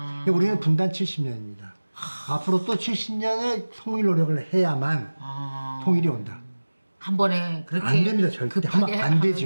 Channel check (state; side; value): inverted; both; correlation -1.00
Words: 우리는 분단 70년입니다. 앞으로 또 70년의 통일 노력을 해야만 통일이 온다. 한 번에 그렇게 안 됩니다. 절대 하면 안